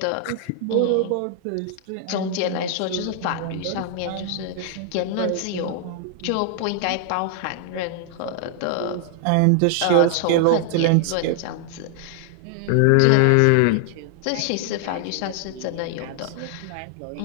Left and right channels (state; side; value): different; both; correlation 0.00